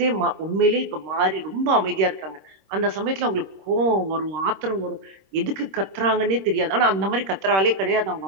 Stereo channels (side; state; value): left; late; 26 ms